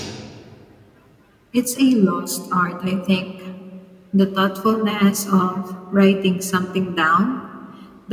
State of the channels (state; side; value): identical; both; correlation 1.00